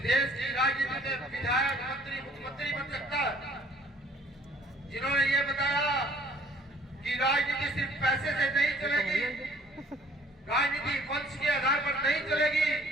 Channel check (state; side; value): normal; both; correlation 0.56